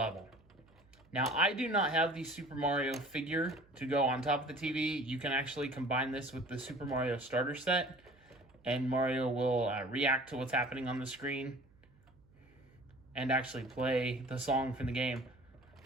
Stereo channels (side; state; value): right; noise; hum, 29 dB below the sound